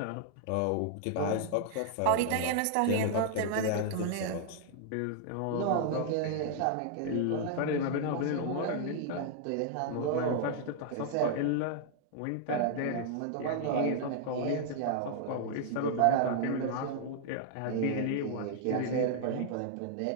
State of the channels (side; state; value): both; different; correlation -0.01